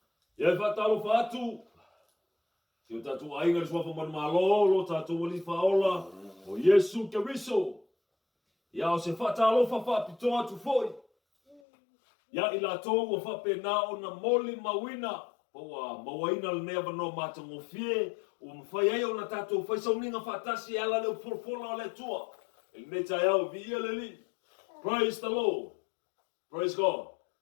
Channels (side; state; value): right; drops out; at 11.6 s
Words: Ia fatalo fatu. Tio tatu ainga le swafa man malolo tatu wali faola o Yesu Keriso. Ia o se fatalo fa pitoa tu foi. Ia ila tau o fa penao na moli mawina. Poa mawaina le neva no matango fie. O mawhai ai o na tatu fai sauninga fatasi ala leo forfola le tua. El neta yao via le li. Praise the Lord. Praise God.